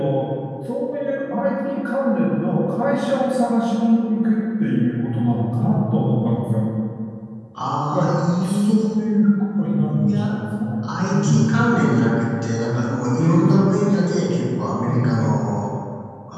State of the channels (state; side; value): identical; both; correlation 1.00